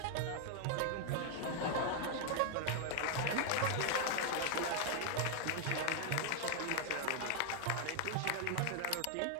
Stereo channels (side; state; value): both; different; correlation 0.00